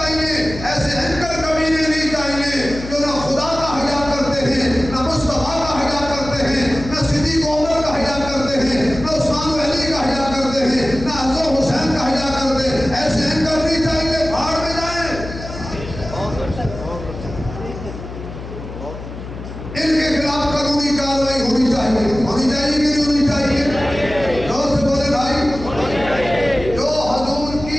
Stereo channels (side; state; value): left; noise; hum, 11 dB below the sound